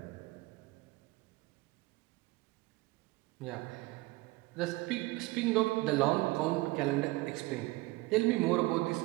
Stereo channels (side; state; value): left; quieter; 21.3 dB